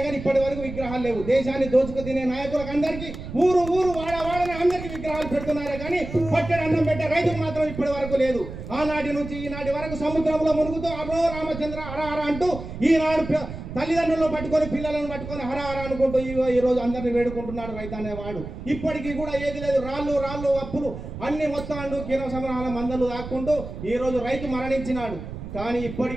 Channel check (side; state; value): right; noise; rumble, 10 dB below the sound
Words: కానీ ఇప్పటి వరకు విగ్రహాలు లేవు. దేశాన్ని దోచుకు తినే నాయకులకు అందరికీ ఊరు వాడని అందరికీ విగ్రహాలు పెడుతున్నారే కానీ పట్టెడు అన్నం పెట్టే రైతుకు మాత్రం ఇప్పటి వరకు లేదు. ఆనాటి నుంచి ఈనాటి వరకు సముద్రంలో మునుగుతూ అరో రామచంద్ర హర అంటూ ఈనాడు తల్లిదండ్రులను పట్టుకొని పిల్లలను పట్టుకొని హర అనుకుంటూ ఈ రోజు అందరిని వేడుకుంటున్నాడు రైతు అనేవాడు. ఇప్పటికీ కూడా ఏది లేదు, రాళ్ళు అప్పులు అన్ని మొత్తాలు కిరణ సంగ్రహాల మందలు దాక్కుంటూ ఈ రోజు రైతు మరణించినాడు. కానీ